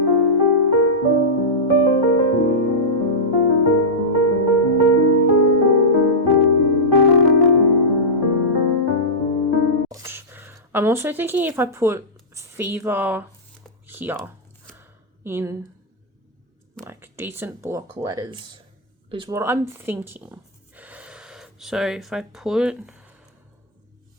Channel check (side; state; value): both; normal; correlation -0.12